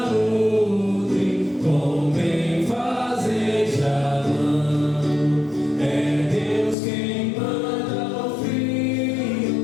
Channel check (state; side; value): drops out; right; at 6.8 s